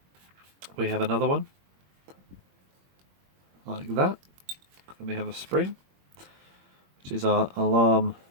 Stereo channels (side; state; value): left; late; 21 ms